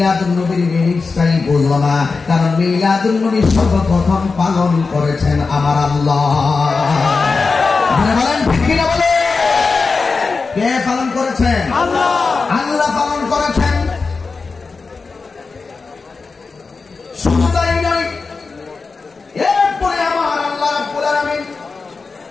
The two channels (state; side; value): quieter; right; 4.4 dB